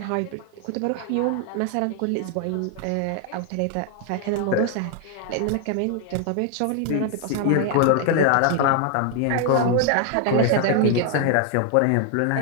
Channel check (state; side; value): different; both; correlation 0.00